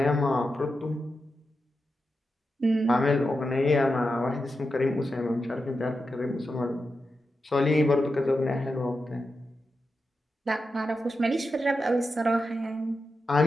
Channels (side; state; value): both; normal; correlation 0.89